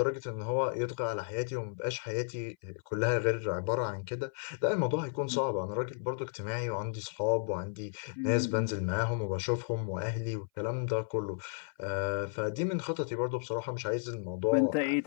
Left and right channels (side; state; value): right; silent; 56 dB below the other